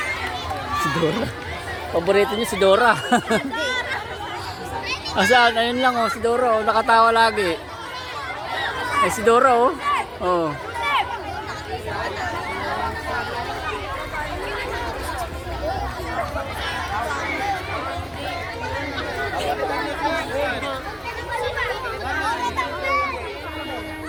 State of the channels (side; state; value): both; identical; correlation 1.00